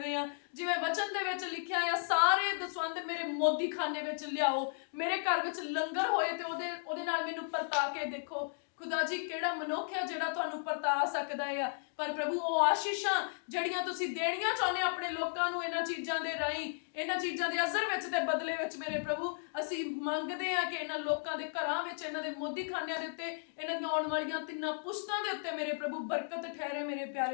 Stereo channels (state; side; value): silent; right; digital silence